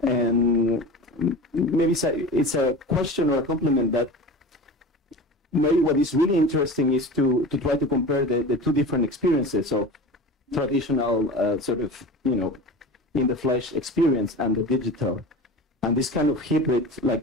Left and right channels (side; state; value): both; normal; correlation 0.33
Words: And maybe it's a question or a compliment that maybe what is really interesting is to try to compare the two different experiences of traditional sort of, you know, in the flesh experience and the digital. And this kind of hybrid,